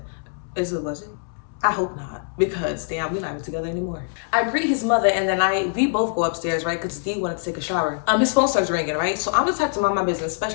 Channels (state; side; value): silent; right; digital silence